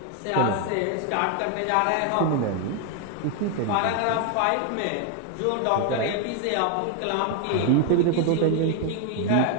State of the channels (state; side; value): different; both; correlation 0.01